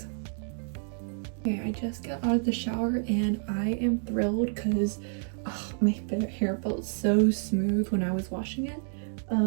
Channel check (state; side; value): silent; left; 58 dB below the other